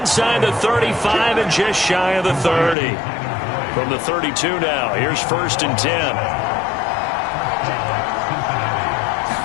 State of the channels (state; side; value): drops out; right; at 2.8 s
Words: the 35 and just shy of the 30. From the 32 now. Here's first and 10.